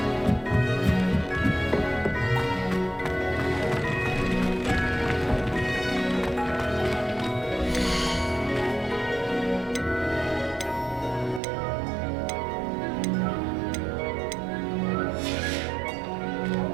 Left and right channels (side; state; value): left; drops out; at 11.4 s